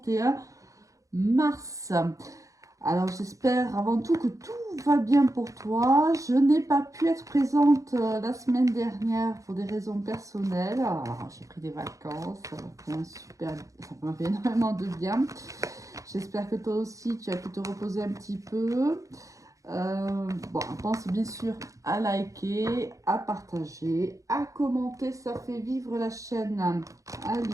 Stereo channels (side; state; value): left; late; 0.16 ms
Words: mars. Alors, j'espère avant tout que tout va bien pour toi. Je n'ai pas pu être présente la semaine dernière pour des raisons personnelles. Alors, j'ai pris des vacances, ça m'a fait énormément de bien. J'espère que toi aussi, tu as pu te reposer un petit peu. Bon, pense bien sûr à liker, à partager, à commenter, ça fait vivre la chaîne. Allez,